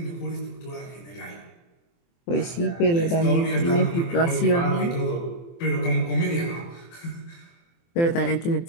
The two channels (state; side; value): late; right; 24 ms